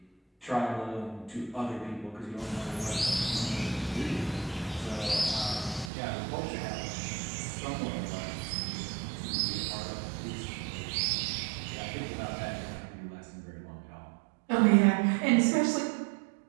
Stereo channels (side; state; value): left; drops out; at 5.9 s